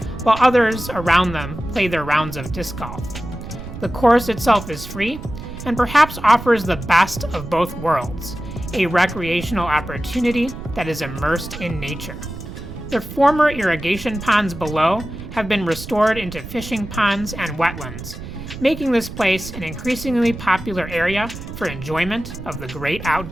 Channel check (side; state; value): right; noise; rumble, 11 dB below the sound